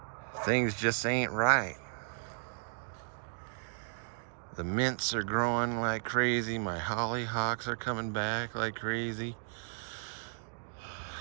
Things just ain't right. The mints are growing like crazy. My hollyhocks are coming back like crazy.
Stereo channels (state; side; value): silent; left; digital silence